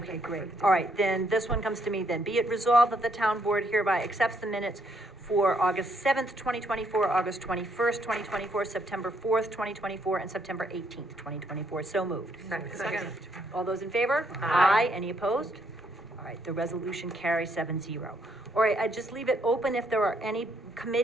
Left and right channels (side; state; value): both; normal; correlation 0.72